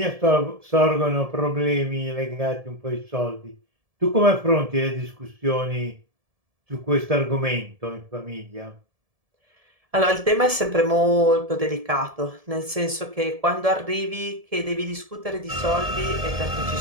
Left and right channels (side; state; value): left; late; 1.7 ms